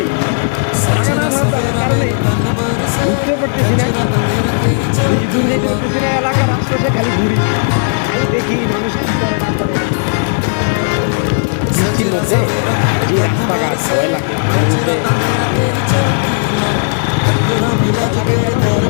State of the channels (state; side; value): silent; right; 64 dB below the other